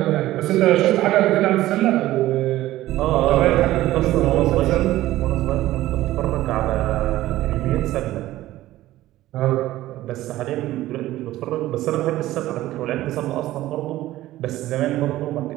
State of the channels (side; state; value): left; quieter; 15.6 dB